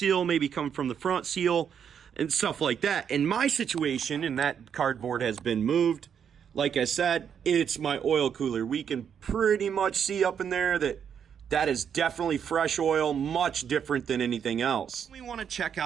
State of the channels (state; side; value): quieter; left; 7.9 dB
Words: maybe coming from the front seal, and stuff like that. In my situation, and that cardboard has been moved, like I said, it's my oil cooler. We can pretty much see up in there that is definitely fresh oil, much different than anything else. We want to check